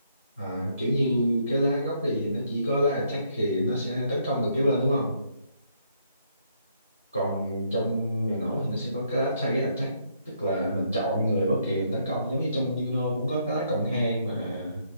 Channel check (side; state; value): both; inverted; correlation -0.73